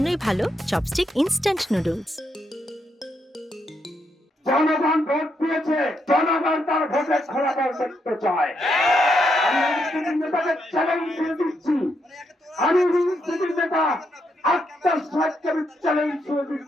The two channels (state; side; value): normal; both; correlation 0.79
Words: ভালো চপস্টিক ইনস্ট্যান্ট নুডলস। জনগণ ভোট দিয়েছে, জনগণ তার ভোটে ফলাফল দেখতে চায়। আমি রাজনীতির নেতাকে চ্যালেঞ্জ করে দিচ্ছি, আমি রাজনীতির নেতা আক্তার সাহেবকে চ্যালেঞ্জ করে